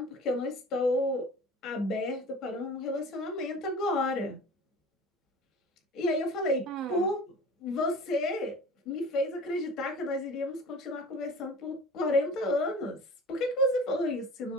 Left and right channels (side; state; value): both; normal; correlation 0.40